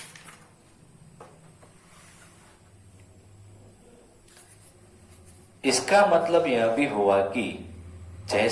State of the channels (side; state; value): both; identical; correlation 1.00